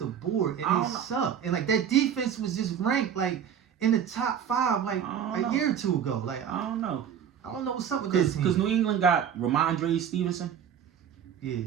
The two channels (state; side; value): quieter; left; 8.5 dB